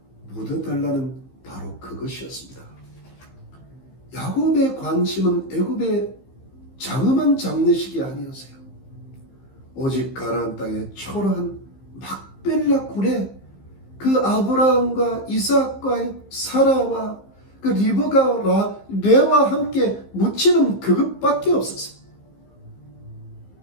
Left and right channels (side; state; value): right; late; 15 ms